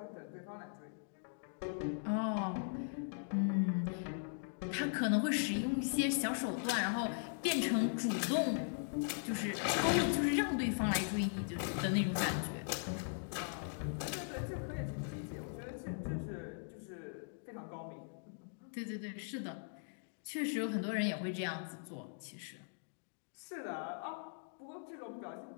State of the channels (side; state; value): right; silent; digital silence